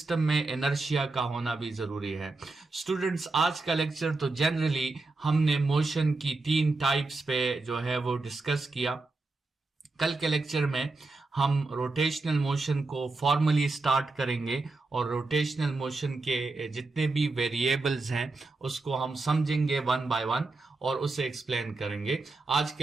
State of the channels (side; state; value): left; quieter; 3.5 dB